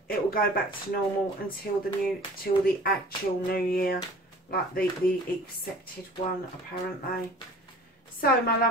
it will go back to normal until the actual new year, like the accepted one apparently. So, my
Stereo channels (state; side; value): normal; both; correlation 0.45